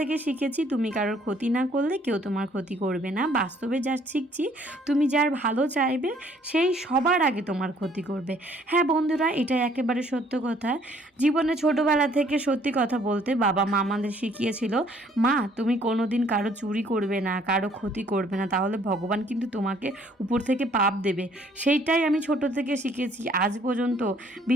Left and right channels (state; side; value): normal; both; correlation 0.62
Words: শিখেছি তুমি কারোর ক্ষতি না করলে কেউ তোমার ক্ষতি করবে না। বাস্তবে যা শিখছি, তুমি যার ভালো চাইবে সেই সবার আগে তোমার ক্ষতি করবে। হ্যাঁ বন্ধুরা, এটা একেবারে সত্য কথা। জীবনে ছোটোবেলা থেকে সত্যি কথা বলতে বাবা মা আমাদের শিখিয়েছিল, মা তুমি কোনো দিন কারো চুরি করবে না, কারো ক্ষতি করবে না, তাহলে ভগবান কিন্তু তোমাকে উপর থেকে পাপ দেবে। সেইটাই আমি ছোট থেকে শিখেছি। আজ পর্যন্ত